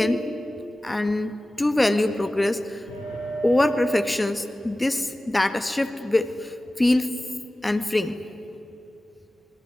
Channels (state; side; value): normal; both; correlation 0.96